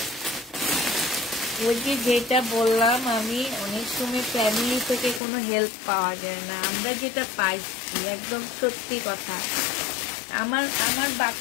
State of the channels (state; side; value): drops out; right; at 5.2 s